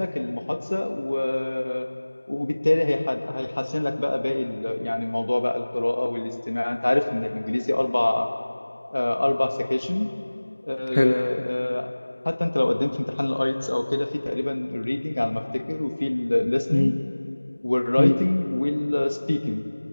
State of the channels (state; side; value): inverted; both; correlation -1.00